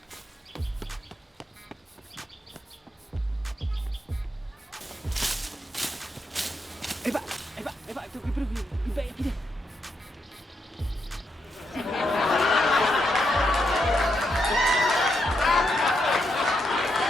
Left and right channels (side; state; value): both; normal; correlation 0.81